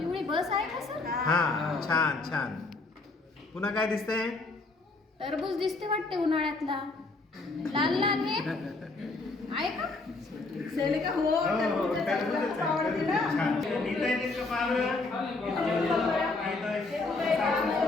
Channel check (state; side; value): quieter; right; 3.5 dB